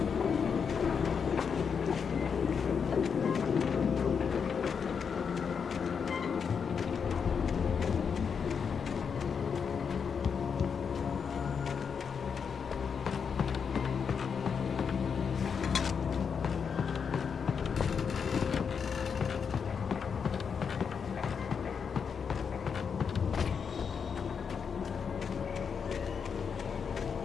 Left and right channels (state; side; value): quieter; right; 6.5 dB